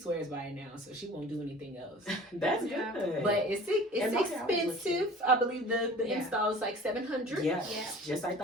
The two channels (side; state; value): both; normal; correlation 0.44